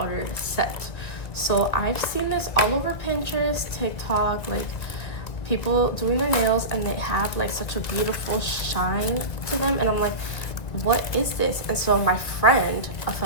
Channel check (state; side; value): late; right; 2.1 ms